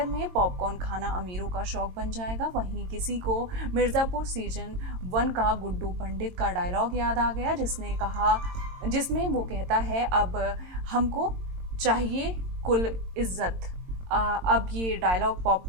में पॉपकॉर्न खाना अमीरों का शौक बन जाएगा। वहीं किसी को मिर्जापुर सीजन 1 का गुड्डू पंडित का डायलॉग याद आ गया, जिसमें वो कहता है, अब हमको चाहिए कुल इज्जत। अब ये डायलॉग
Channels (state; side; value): late; left; 22 ms